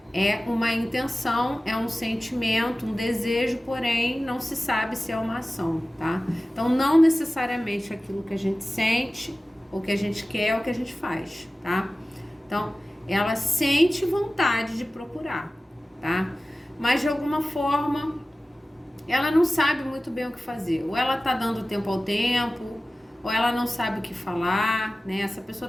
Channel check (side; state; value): both; normal; correlation 0.96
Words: é uma intenção, é um sentimento, um desejo, porém não se sabe se é uma ação, tá? Então, não necessariamente aquilo que a gente sente, ou que a gente quer, ou que a gente faz, tá? Então, ela sente vontade de procurar, tá? Mas de alguma forma ela não sabe muito bem o que fazer. Ou ela tá dando tempo ao tempo, ou ela não sabe o que falar, né? Essa